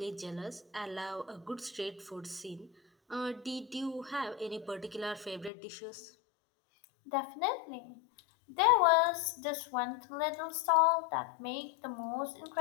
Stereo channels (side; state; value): right; drops out; at 5.5 s